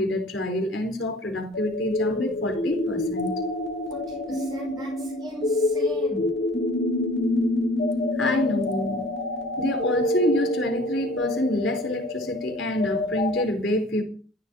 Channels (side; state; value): both; normal; correlation 0.48